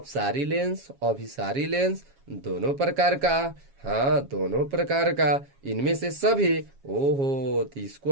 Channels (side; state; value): left; late; 7.3 ms